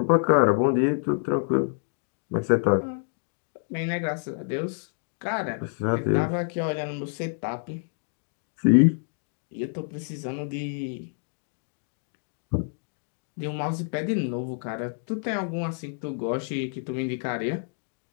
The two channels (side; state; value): right; silent; 60 dB below the other